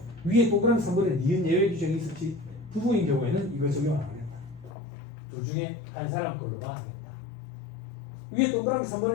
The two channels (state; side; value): drops out; right; at 4.7 s